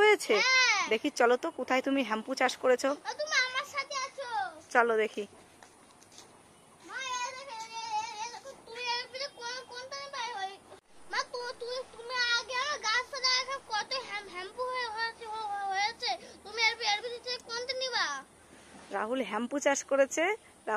হ্যাঁ। দেখি চলো তো, কোথায় তুমি হ্যাম্পু চাষ করেছো? তুমি আমার সাথে আছো। চলো দেখি। মা তুমি এর ভিতরে কোনটা পাই হয়? মা তুমি আগে আমার গাছটা দেখা কত শ্যাম্পু হয়েছে, তুমি এর ভিতরে কোনটা নিবা? রাহুল হ্যাম্পু চাষ করেছে,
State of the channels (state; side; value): identical; both; correlation 1.00